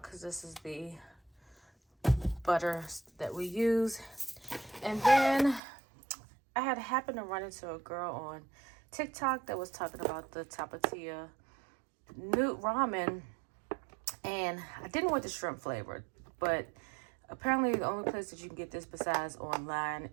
because this is the butter that we use. And then I had happened to run into a girl on TikTok that was talking about the Tapatía Newt ramen, and I didn't want the shrimp flavor, but apparently the only place that you can get this besides online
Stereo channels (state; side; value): drops out; left; at 5.6 s